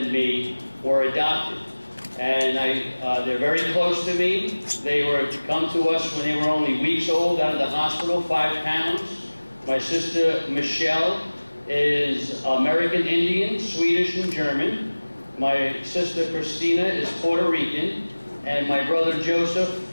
me were adopted. And they're very close to me. They were to come to us when they were only weeks old out of the hospital, 5 pounds. My sister Rochelle is American Indian, Swedish, and German. My sister Christina is Puerto Rican, and my brother Joseph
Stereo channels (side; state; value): both; inverted; correlation -1.00